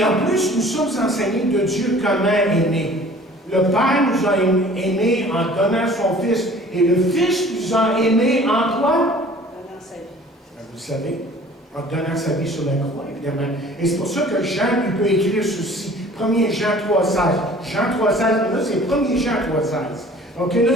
en plus, nous sommes enseignés de Dieu comment aimer. Le Père nous a aimés en donnant son Fils, et le Fils nous a aimés en quoi? Donnant sa vie. Vous le savez, en donnant sa vie sur la croix, évidemment. Et c'est pour ça que Jean, il peut écrire ceci. 1er Jean 3,16. Jean 3,16, là, c'est 1er Jean 3,16. OK, là,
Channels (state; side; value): normal; both; correlation 0.49